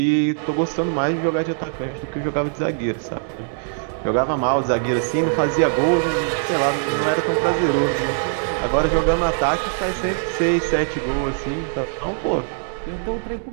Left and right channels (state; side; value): silent; left; digital silence